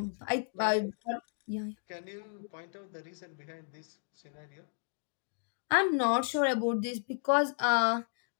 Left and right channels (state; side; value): silent; right; digital silence